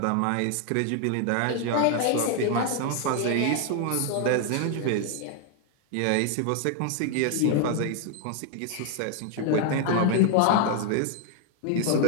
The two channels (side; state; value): both; different; correlation 0.00